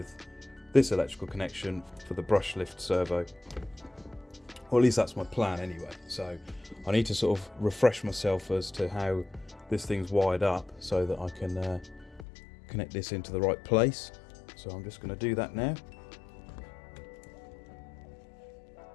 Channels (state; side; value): drops out; right; at 12.2 s